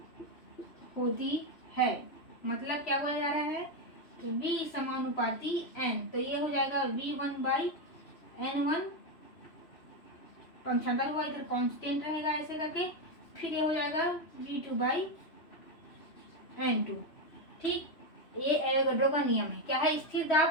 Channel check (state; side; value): late; right; 3.0 ms